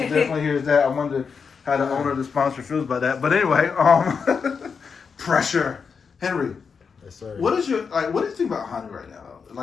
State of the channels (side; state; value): right; quieter; 5.8 dB